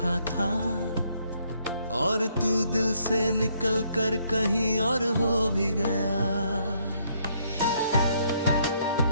था और तू दिल से निकल कर कहीं और हो भी गया।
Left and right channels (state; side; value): inverted; both; correlation -0.71